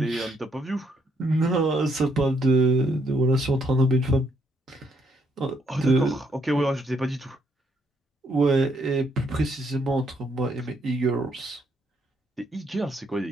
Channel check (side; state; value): both; normal; correlation 0.73